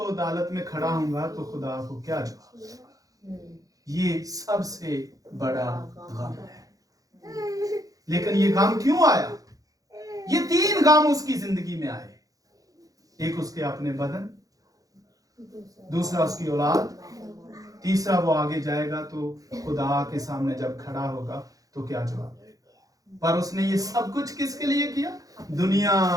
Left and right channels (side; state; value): left; late; 0.17 ms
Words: عدالت میں کھڑا ہوں گا تو خدا کو کیا جواب۔ یہ سب سے بڑا غم ہے۔ لیکن یہ غم کیوں آیا؟ یہ 3 غم اس کی زندگی میں آئے۔ ایک اس کے اپنے بدن، دوسرا اس کی اولاد، تیسرا وہ آگے جائے گا تو خدا کے سامنے جب کھڑا ہوگا تو کیا جواب دے گا۔ پر اس نے یہ سب کچھ کس کے لیے کیا؟ دنیا